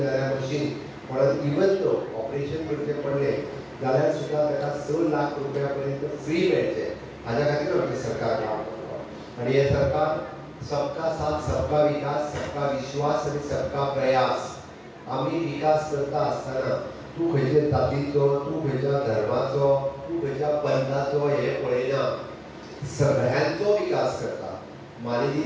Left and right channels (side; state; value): both; identical; correlation 1.00